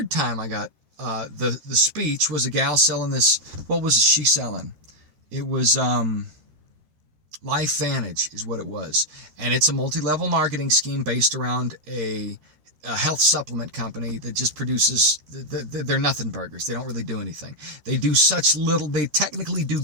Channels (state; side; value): late; left; 13 ms